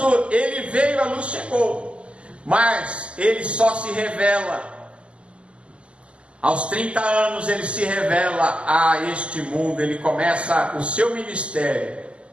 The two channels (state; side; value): late; left; 0.055 ms